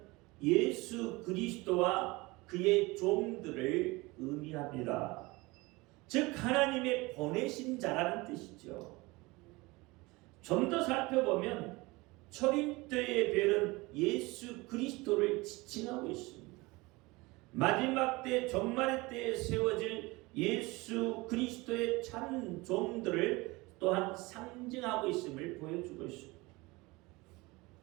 예수 그리스도와 그의 종들을 의미합니다. 즉 하나님의 보내신 자라는 뜻이죠. 좀 더 살펴보면 초림 때의 별은 예수 그리스도를 지칭하고 있습니다. 마지막 때 종말의 때에 세워질 예수 그리스도의 참 종들을 또한 상징하고 있음을 보여주고 있습니다.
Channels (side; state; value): left; quieter; 23.0 dB